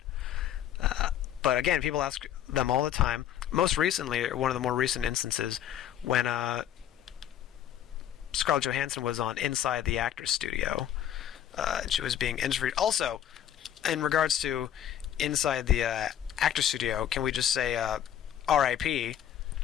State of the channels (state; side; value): quieter; right; 10.6 dB